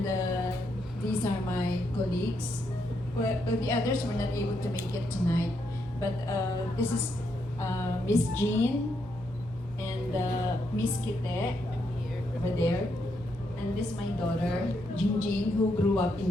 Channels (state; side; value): noise; right; hum, 17 dB below the sound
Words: these are my colleagues. Well, the others were not able to make it tonight, but this is Miss Jean and Miss Kite over there, and this is my daughter Jingjing, who grew up in